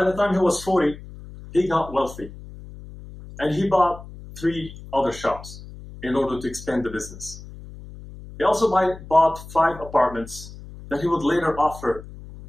the time he was 40, he got wealthy. And he bought 3 other shops in order to expand the business. He also bought 5 apartments that he would later offer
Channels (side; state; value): left; noise; hum, 15 dB below the sound